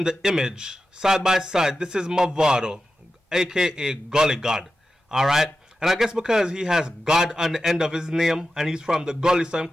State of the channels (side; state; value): both; normal; correlation 0.91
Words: the image, side by side, this is Mavado, aka Gully God. Alright, and I guess because he has God on the end of his name, and he's from the gully, so he